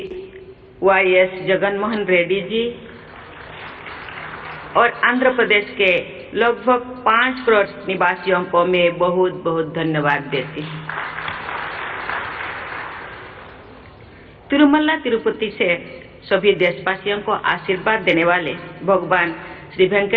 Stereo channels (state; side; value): identical; both; correlation 1.00